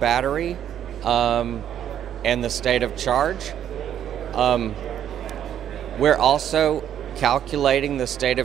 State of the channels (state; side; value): quieter; left; 10.1 dB